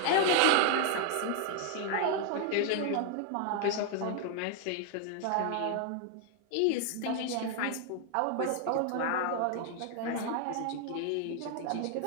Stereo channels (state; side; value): different; both; correlation 0.00